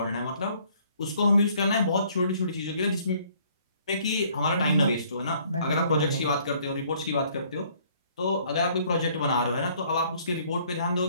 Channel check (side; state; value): both; inverted; correlation -0.61